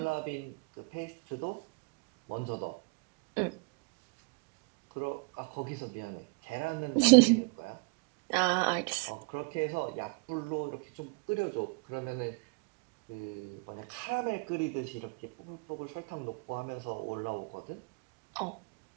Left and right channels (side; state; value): left; quieter; 33.1 dB